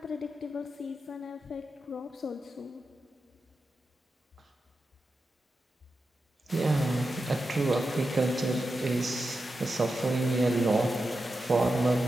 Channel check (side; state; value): both; normal; correlation 0.90